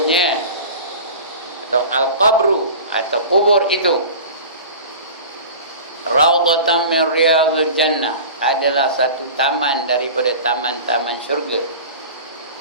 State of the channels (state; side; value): inverted; both; correlation -0.37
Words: atau al-qabru, atau kubur itu, raudhatan min riyadil jannah, adalah satu taman daripada taman-taman syurga.